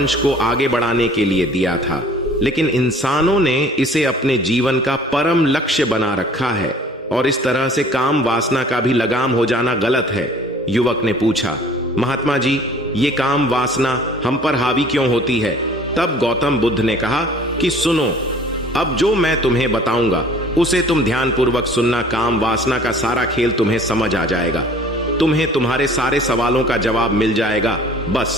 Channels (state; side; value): normal; both; correlation 0.51